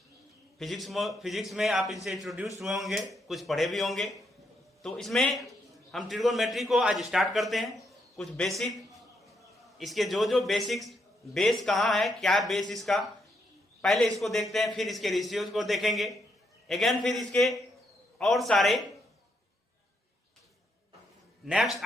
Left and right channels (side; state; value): both; normal; correlation 0.77